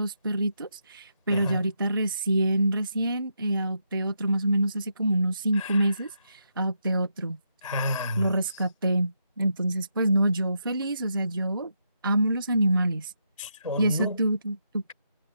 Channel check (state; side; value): inverted; both; correlation -0.81